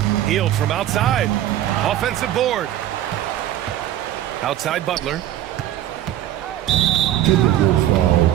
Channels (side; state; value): left; quieter; 12.6 dB